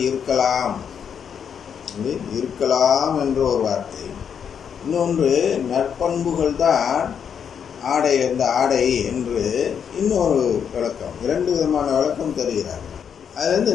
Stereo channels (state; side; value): quieter; right; 7.6 dB